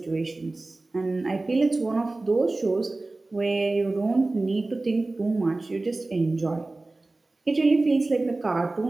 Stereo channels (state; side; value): quieter; left; 3.1 dB